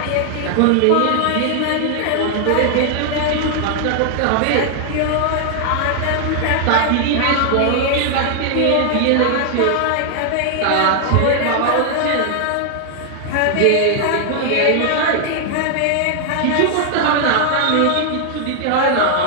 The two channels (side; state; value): both; different; correlation 0.00